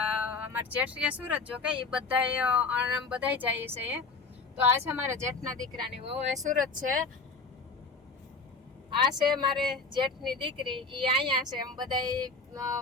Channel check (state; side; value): quieter; right; 4.1 dB